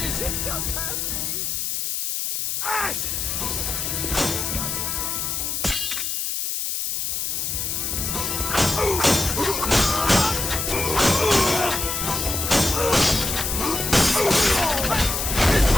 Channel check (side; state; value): left; noise; hiss, 1 dB below the sound